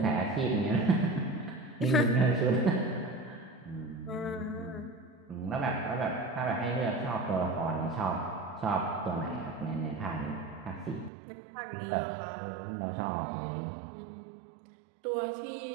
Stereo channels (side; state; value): left; drops out; at 11.1 s